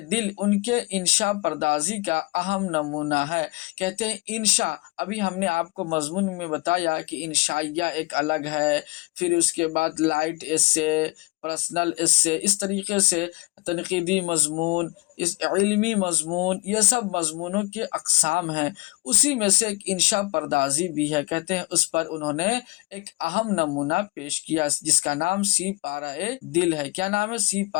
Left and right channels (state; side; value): quieter; right; 23.6 dB